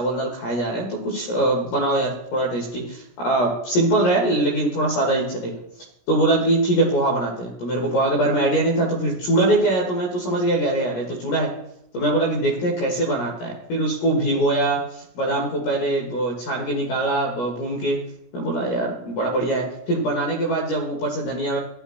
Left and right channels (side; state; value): right; late; 17 ms